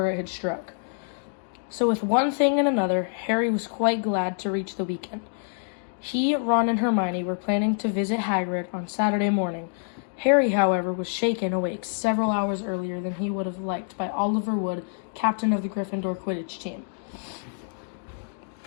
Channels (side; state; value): right; silent; digital silence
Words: it had struck. So with one thing and another, Harry was quite glad to reach the weekend. He, Ron, and Hermione were planning to visit Hagrid on Saturday morning. Harry, however, was shaken awake several hours earlier than he would have liked by Oliver Wood, captain of the Gryffindor Quidditch team.